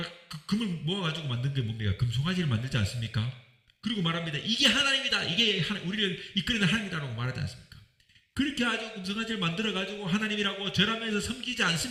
금을 모아가지고 만든 게 뭡니까? 금송아지를 만들지 않습니까? 그리고 말합니다. 이게 하나님이다. 이게 우리를 이끌어낸 하나님이다라고 말하지 않습니까? 그렇게 아주 금송아지를 만들어가지고 하나님이라고 절하면서 섬기지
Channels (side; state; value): both; identical; correlation 1.00